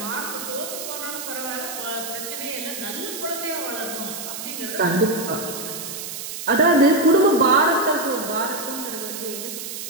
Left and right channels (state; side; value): noise; right; hiss, 7 dB below the sound